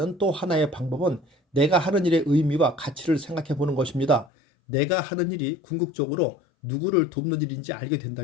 또 하나의 방법은 내가 하는 일의 의미와 가치를 생각해 보는 것입니다. 내가 하는 일이 궁극적으로 누구를 돕는 일인지 알게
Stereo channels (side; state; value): right; drops out; at 4.3 s